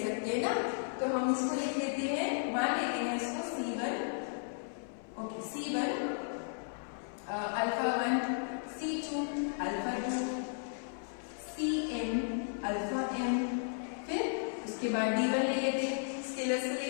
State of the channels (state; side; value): silent; right; 55 dB below the other